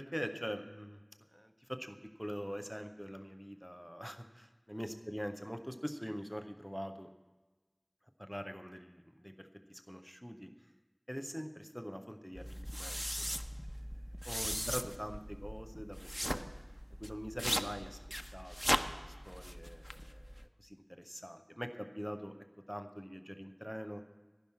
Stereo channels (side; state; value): both; identical; correlation 1.00